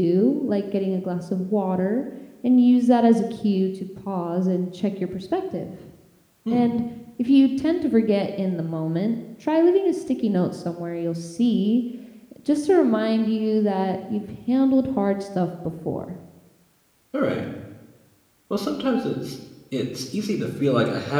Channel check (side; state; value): both; identical; correlation 1.00